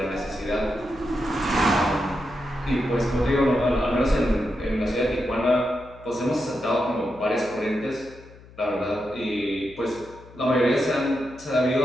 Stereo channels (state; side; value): noise; left; hum, 22 dB below the sound